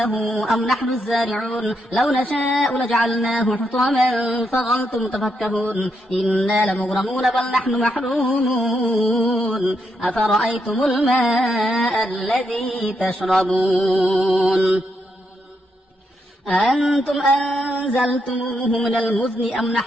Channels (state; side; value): normal; both; correlation 0.80